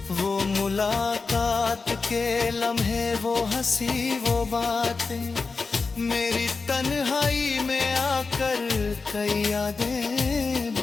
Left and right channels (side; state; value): right; quieter; 4.3 dB